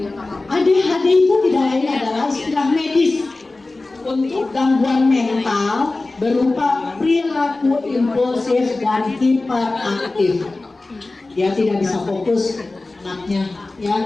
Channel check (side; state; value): right; quieter; 3.2 dB